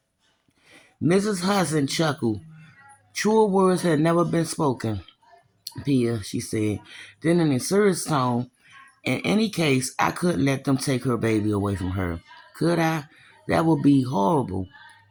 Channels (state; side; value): identical; both; correlation 1.00